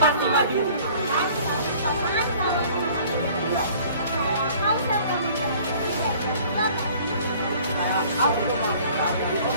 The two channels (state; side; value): inverted; both; correlation -0.52